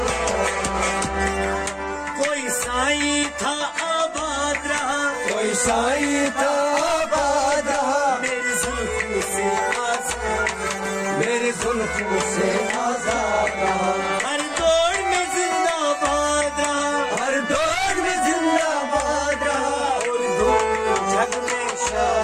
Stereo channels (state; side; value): identical; both; correlation 1.00